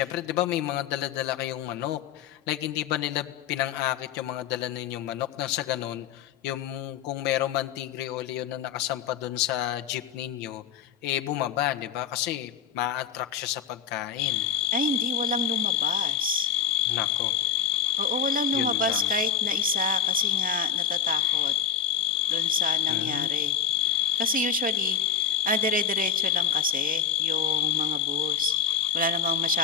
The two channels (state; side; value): quieter; right; 7.5 dB